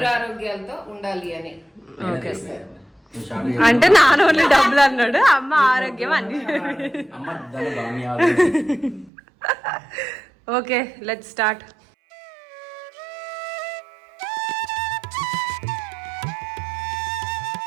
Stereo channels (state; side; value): drops out; left; at 9.1 s